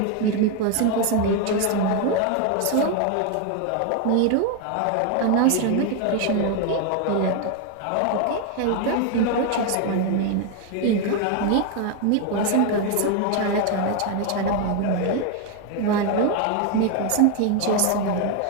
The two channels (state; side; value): different; both; correlation 0.01